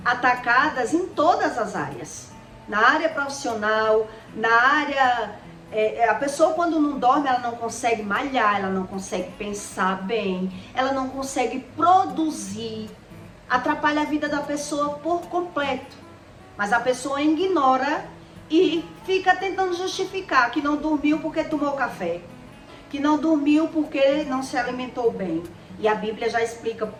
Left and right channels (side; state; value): both; identical; correlation 1.00